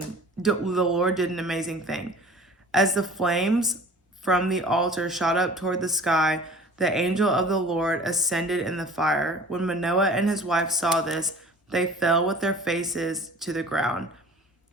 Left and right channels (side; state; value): both; normal; correlation 0.45